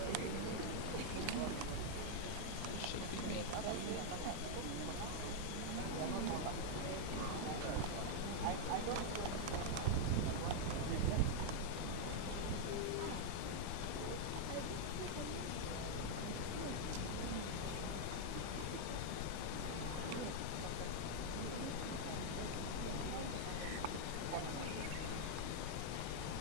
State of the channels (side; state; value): both; different; correlation -0.01